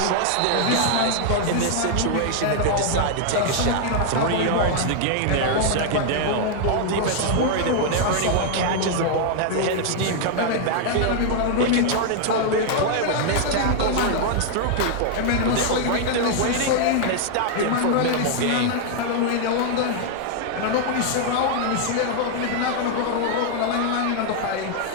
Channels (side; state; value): both; different; correlation 0.00